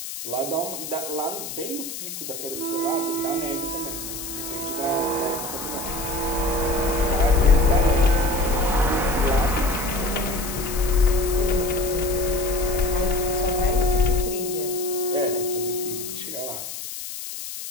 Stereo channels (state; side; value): noise; left; hiss, 8 dB below the sound